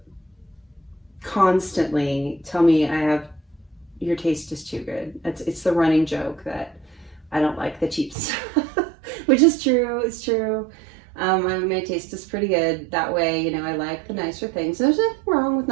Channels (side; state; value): left; drops out; at 8.2 s